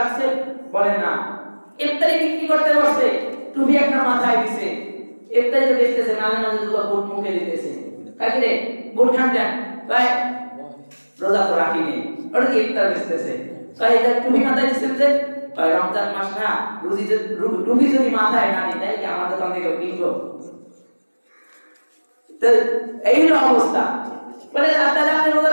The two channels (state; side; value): inverted; both; correlation -1.00